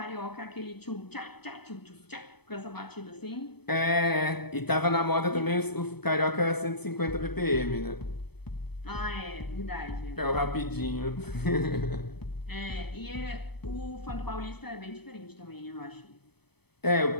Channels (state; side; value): late; right; 0.97 ms